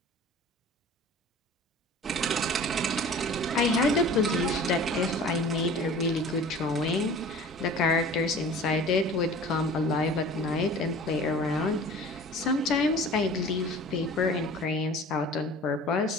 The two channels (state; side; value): normal; both; correlation 0.43